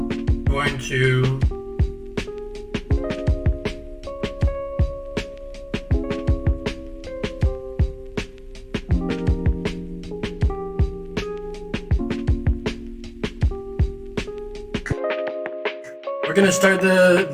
Going to we're gonna start the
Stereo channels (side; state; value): both; identical; correlation 1.00